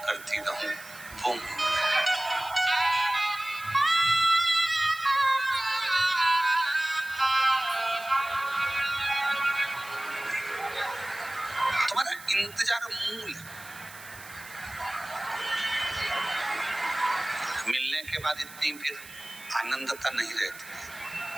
करती रहूं। वो तुम्हारा इंतजार मूल है। मिलने के बाद इतनी फिर आनंदता नहीं रहती,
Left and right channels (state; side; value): noise; right; hiss, 17 dB below the sound